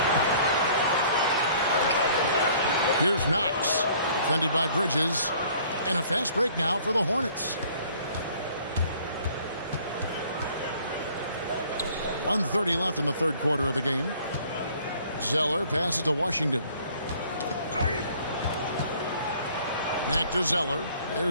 Here's Knox. Defended by Bridges. And a fast break now for the Hornets. 1:30 left in the third quarter of the game. Zeller passes to Washington. Back to Zeller.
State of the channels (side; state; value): both; inverted; correlation -0.56